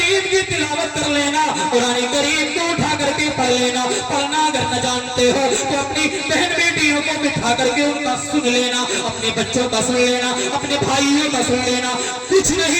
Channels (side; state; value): both; identical; correlation 1.00